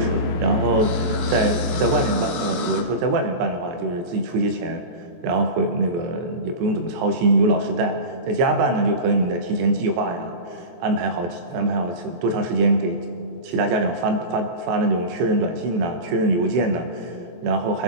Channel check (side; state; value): left; late; 23 ms